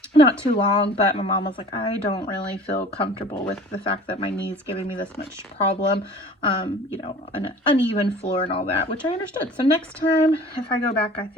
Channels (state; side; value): normal; both; correlation 0.45